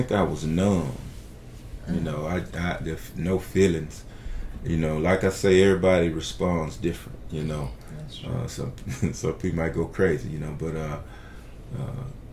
I was numb. You know, I there's no feelings. You know, like I say, everybody responds different. You know, some people might go crazy. You know, but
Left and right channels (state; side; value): identical; both; correlation 1.00